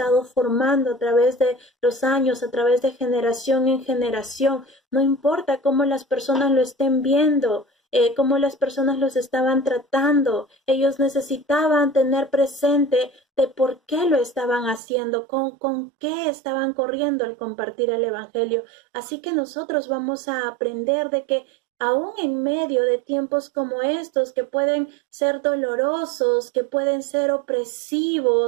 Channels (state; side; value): drops out; left; at 14.8 s